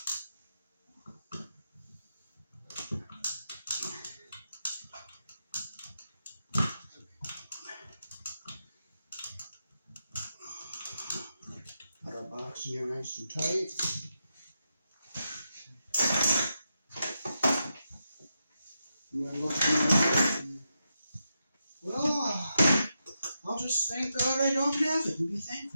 Put our box in here nice and tight. And then look in. Well, I'll just thank God I don't have it and be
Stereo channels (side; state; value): both; inverted; correlation -0.86